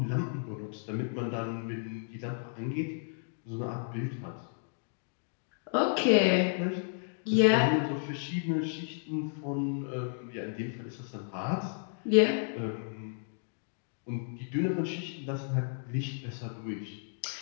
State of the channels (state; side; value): silent; right; digital silence